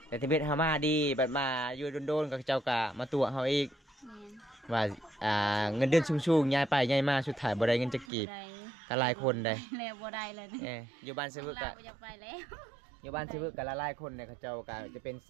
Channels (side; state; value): left; drops out; at 8.1 s